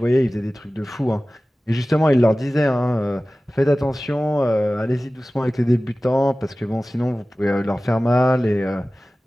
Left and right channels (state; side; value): normal; both; correlation 0.97